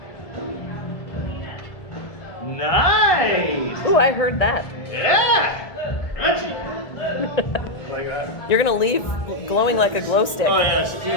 Nice. Ooh, I heard that. Yeah. Crunchy. Like that. You're gonna leave glowing like a glow stick. Oh yeah.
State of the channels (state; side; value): late; right; 1.7 ms